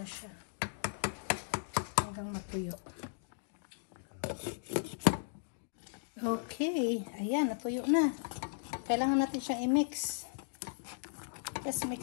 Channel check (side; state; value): right; silent; digital silence